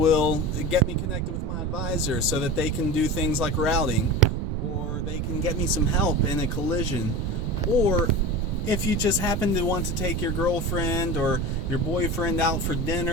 get me connected with my advisor so that they can do things like routing, or they can get me some help in a collision. Or if you just happen to want to take your girlfriend or your boyfriend out for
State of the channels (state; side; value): noise; right; rumble, 2 dB below the sound